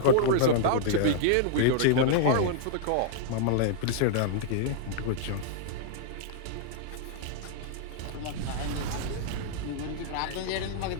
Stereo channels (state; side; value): different; both; correlation -0.01